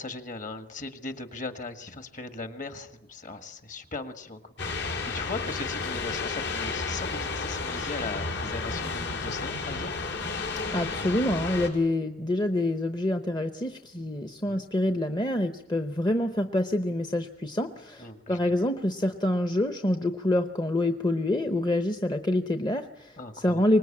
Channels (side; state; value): both; normal; correlation 0.72